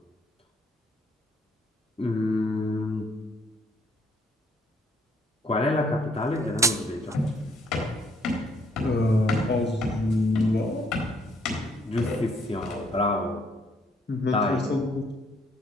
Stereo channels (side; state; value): both; normal; correlation 0.67